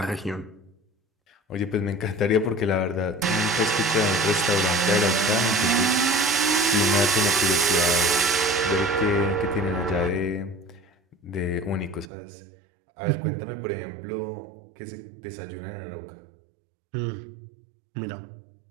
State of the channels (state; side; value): drops out; left; at 12.1 s